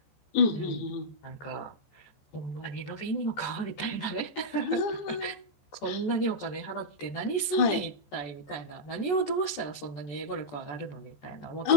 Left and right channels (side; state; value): right; late; 14 ms